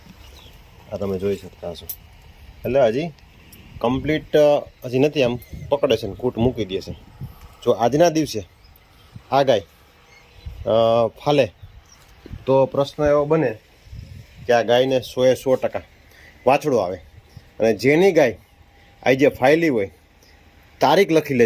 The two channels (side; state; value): both; identical; correlation 1.00